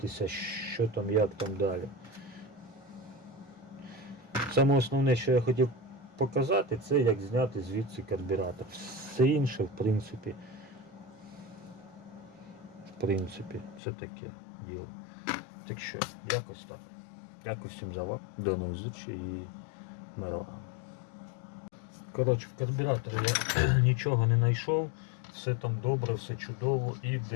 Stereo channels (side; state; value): right; drops out; at 13.8 s